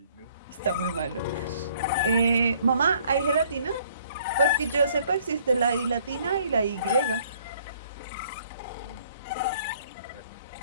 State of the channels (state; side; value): inverted; both; correlation -0.61